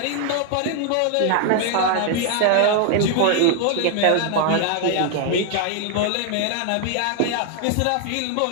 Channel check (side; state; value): both; different; correlation 0.00